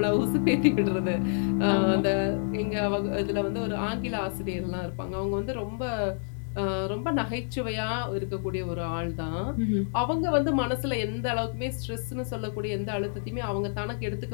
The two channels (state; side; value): silent; right; 59 dB below the other